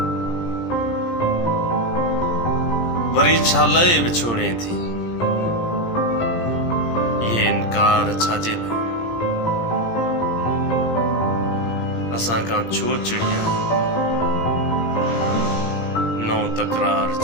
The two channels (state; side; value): late; right; 17 ms